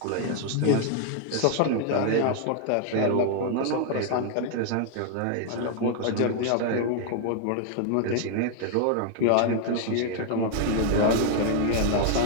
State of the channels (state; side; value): different; both; correlation 0.00